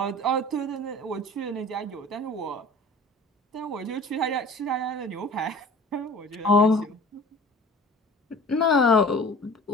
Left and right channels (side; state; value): both; normal; correlation 0.43